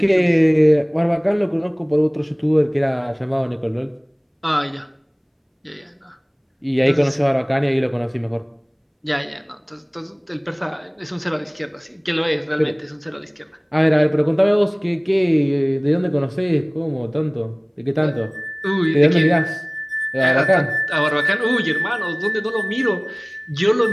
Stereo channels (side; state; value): both; identical; correlation 1.00